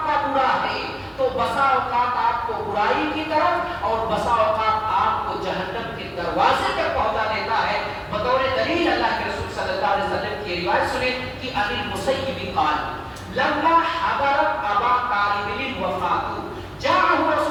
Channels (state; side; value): identical; both; correlation 1.00